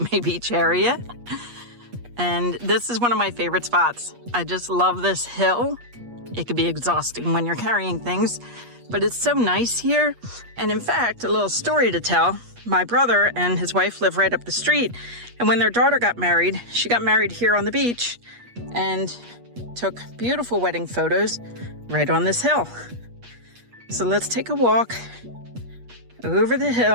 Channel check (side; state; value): left; late; 8.4 ms